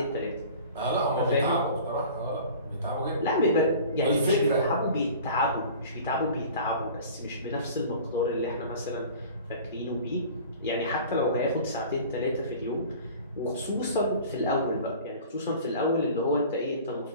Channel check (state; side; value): inverted; both; correlation -0.43